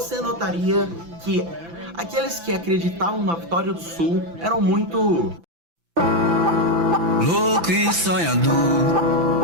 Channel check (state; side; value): late; left; 5.9 ms